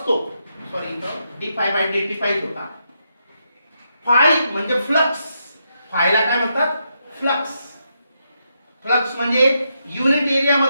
सॉरी इथं d phi by d t पाहिजे होता. फाय म्हणजे फ्लक्स. फायला काय म्हणतात? फ्लक्स. फ्लक्स म्हणजे युनिट एरिया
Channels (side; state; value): both; inverted; correlation -0.82